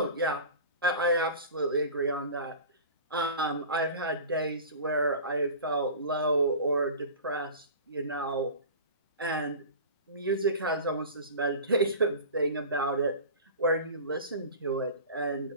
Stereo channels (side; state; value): both; inverted; correlation -0.36